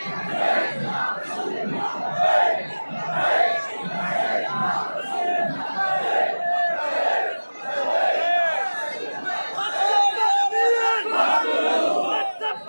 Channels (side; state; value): both; inverted; correlation -1.00